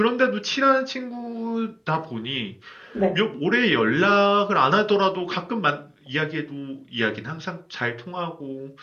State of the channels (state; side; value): identical; both; correlation 1.00